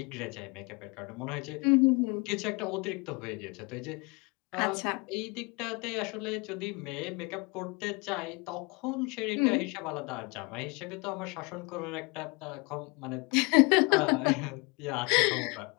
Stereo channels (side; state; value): right; quieter; 28.7 dB